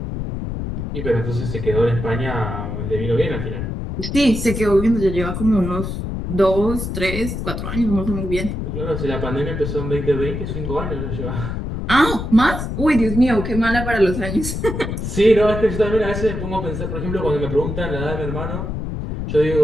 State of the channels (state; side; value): noise; left; rumble, 4 dB below the sound